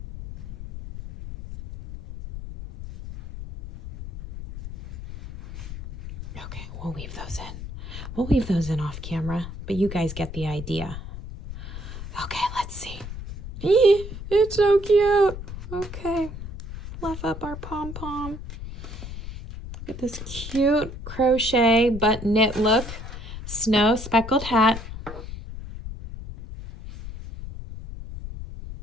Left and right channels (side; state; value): left; noise; rumble, 10 dB below the sound